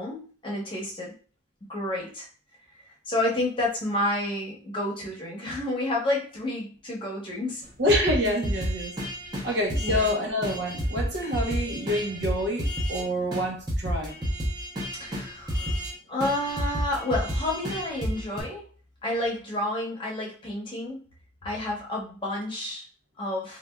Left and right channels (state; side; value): normal; both; correlation 0.42